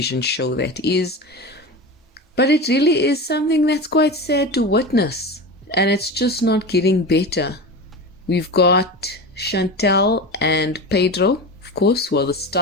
show that is, but it really is something that's quite sad to witness. And it's just not getting better. We've got Chantel and Pedro, of course, who are the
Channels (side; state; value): both; normal; correlation 0.27